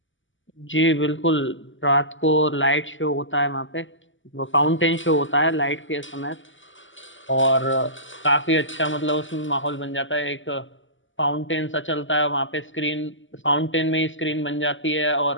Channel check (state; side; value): late; right; 0.56 ms